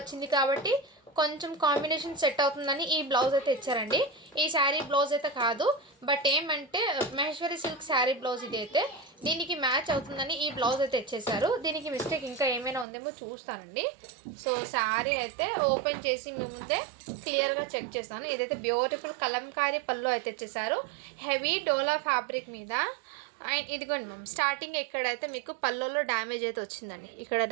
కాబట్టి కొంచెం కాంబినేషన్ సెట్ అవుతుందని ఈ బ్లౌజ్ అయితే ఇచ్చారండి. ఈ శారీ బ్లౌజ్ అయితే కాదు, బట్ ఏమంటే మహేశ్వరి సిల్క్ శారీ బ్లౌజ్ ఇది అయితే దీనికి మ్యాచ్ అవుతుందని ఈ బ్లౌజ్ అయితే ఇచ్చేసారు. దీనికి మిస్టేక్ ఇంకా ఏమైనా ఉందేమో చూస్తానండి. సో శారీ అయితే ఓపెన్ చేసి మీ ముందే క్లియర్గా చెక్ చేస్తాను. ఇదైతే బ్యూటిఫుల్ కలంకారీ పళ్ళు అయితే ఇచ్చేసారు. హెవీ డోలా ఫ్యాబ్రిక్ మీద. అండ్ ఇదిగోండి మ్యామ్, స్టార్టింగ్ ఎక్కడైతే మీకు పళ్ళులో డ్యామేజ్ అయితే వచ్చిందండి. ఇక్కడ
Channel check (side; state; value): left; drops out; at 12.9 s